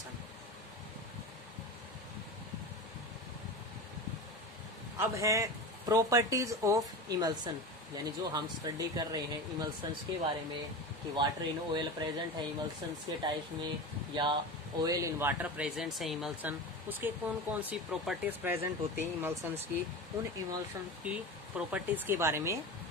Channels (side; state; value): both; normal; correlation 0.27